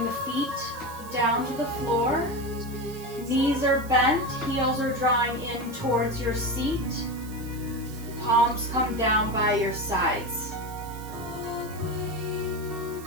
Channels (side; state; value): right; noise; hiss, 18 dB below the sound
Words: the feet down to the floor. Knees are bent, heels are drawing in towards your seat. Palms come down by your sides.